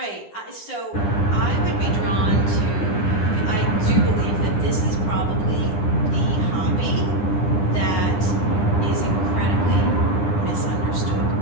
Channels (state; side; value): late; right; 9.8 ms